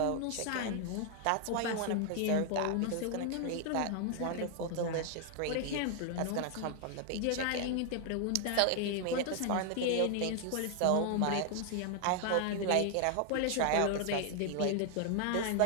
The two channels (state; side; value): different; both; correlation 0.00